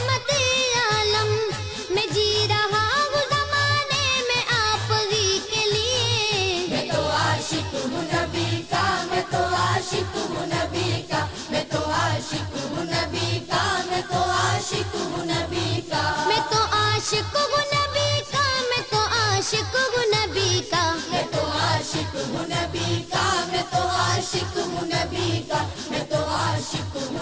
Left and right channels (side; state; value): both; identical; correlation 1.00